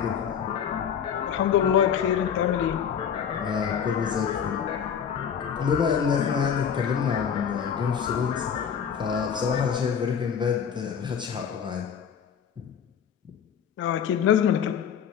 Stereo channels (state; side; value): quieter; right; 7.8 dB